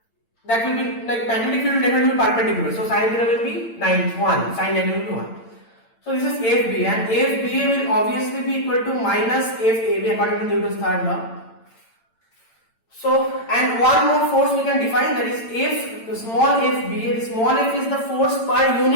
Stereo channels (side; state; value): right; late; 8.9 ms